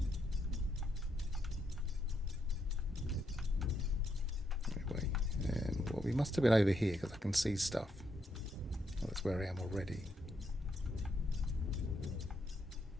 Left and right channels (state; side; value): normal; both; correlation 0.78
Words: must have been over here because I can see stuff. Well, that's where I am already.